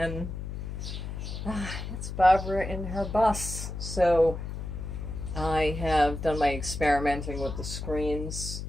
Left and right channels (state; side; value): noise; left; hum, 6 dB below the sound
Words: It's Barbara in her bus. So I have done my experimenting with the screens.